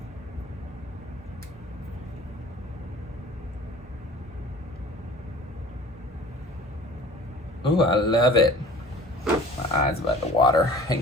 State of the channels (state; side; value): normal; both; correlation 0.44